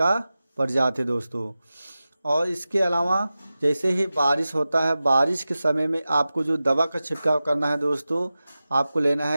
प्रजाति है दोस्तों। और इसके अलावा जैसे ही बारिश होता है, बारिश के समय में आपको जो दवा का छिड़काव करना है दोस्तों, आपको लेना है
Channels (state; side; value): inverted; both; correlation -0.95